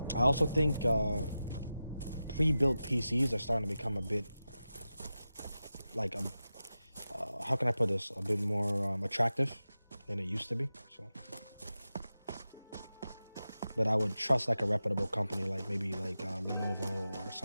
I also think pre-built PCs are starting to become a bit like how can I put this? A bit more attractive than it used to be. So, but I would trust like a reputable company, like maybe like Lenovo or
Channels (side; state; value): both; inverted; correlation -0.93